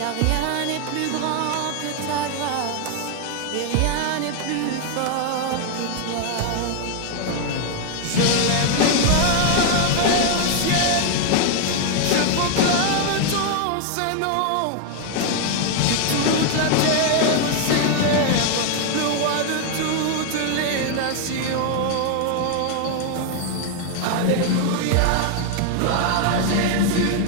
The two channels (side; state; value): both; different; correlation 0.00